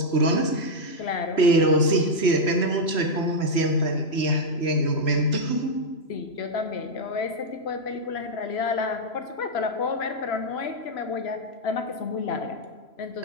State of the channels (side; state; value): right; late; 3.0 ms